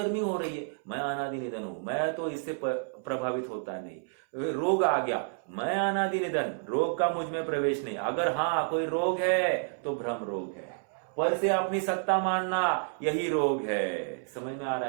हो रही है, मैं अनादि निधन हूं, मैं तो इससे प्रभावित होता नहीं। रोग आ गया, मैं अनादि निधन, रोग का मुझ में प्रवेश नहीं। अगर हाँ कोई रोग है तो भ्रम रोग है, पर से अपनी सत्ता मानना यही रोग है। समझ में आ रहा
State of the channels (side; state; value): left; silent; 57 dB below the other